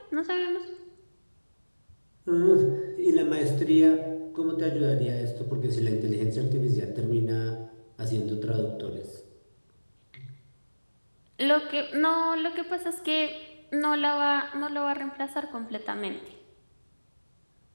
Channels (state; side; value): inverted; both; correlation -1.00